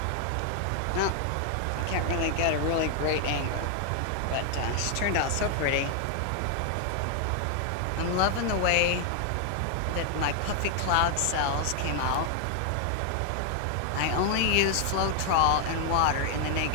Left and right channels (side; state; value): both; different; correlation 0.00